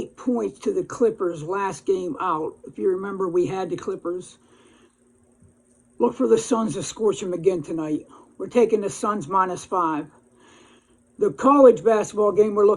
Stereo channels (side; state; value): both; identical; correlation 1.00